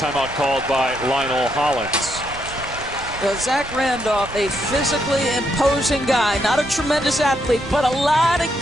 called by Lionel Hollins. Well, Zach Randolph, a physically imposing guy, not a tremendous athlete, but a lot of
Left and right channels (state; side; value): noise; right; rumble, 16 dB below the sound